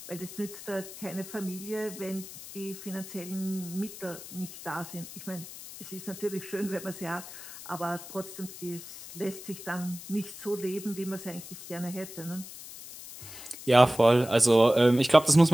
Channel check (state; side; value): noise; left; hiss, 14 dB below the sound